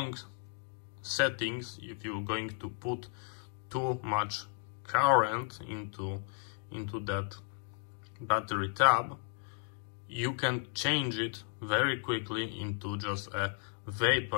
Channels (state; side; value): silent; right; 55 dB below the other